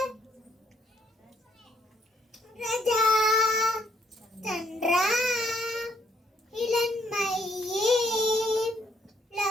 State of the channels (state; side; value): normal; both; correlation 0.69